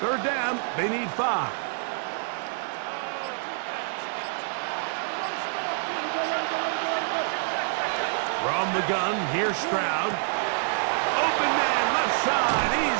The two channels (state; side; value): silent; left; 60 dB below the other